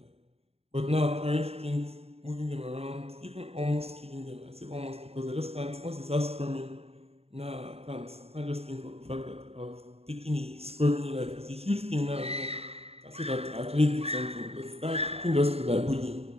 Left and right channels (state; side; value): late; left; 0.29 ms